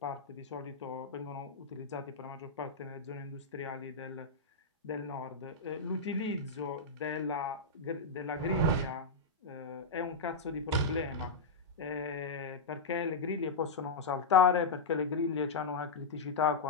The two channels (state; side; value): quieter; right; 3.7 dB